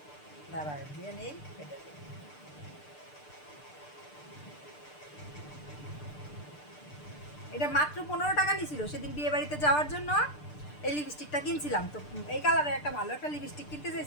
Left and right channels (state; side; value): late; right; 6.7 ms